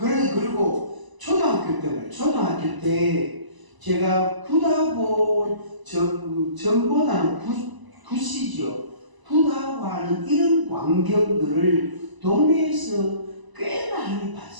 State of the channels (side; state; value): left; late; 1.0 ms